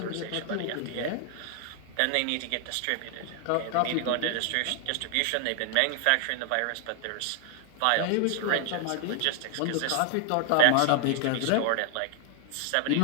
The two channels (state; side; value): different; both; correlation 0.00